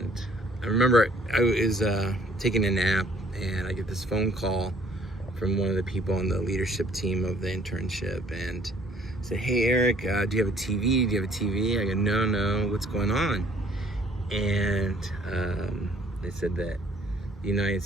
I remember I was taking a nap, and I get this phone call from one of the people on the leadership team of the internship, and said, "Hey Eric, do you have a TV? Do you have a TV?" I go, No, what's going on? And they said that the United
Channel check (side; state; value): both; normal; correlation 0.59